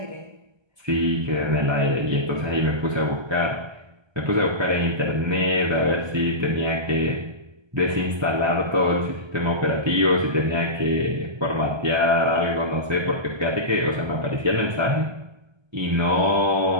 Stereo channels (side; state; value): left; late; 1.3 ms